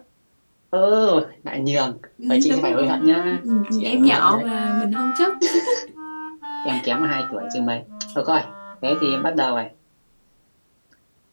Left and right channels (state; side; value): inverted; both; correlation -1.00